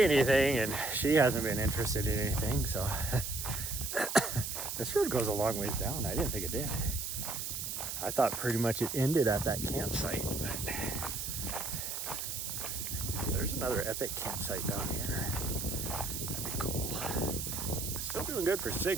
anything, and she hasn't been interested in anything. So this road goes a long ways down. I didn't think it did. I thought pretty much it ended at that campsite, but there's another epic campsite down here. That'd be cool. Still doing good for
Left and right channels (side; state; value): right; noise; hiss, 4 dB below the sound